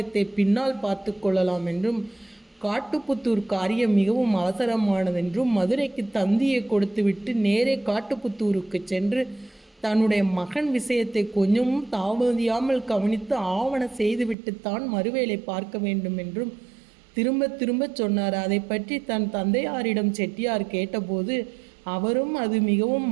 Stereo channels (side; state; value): left; drops out; at 14.4 s